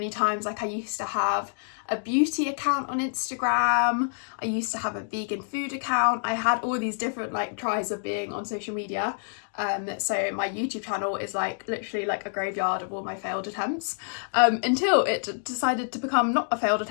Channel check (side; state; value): right; silent; digital silence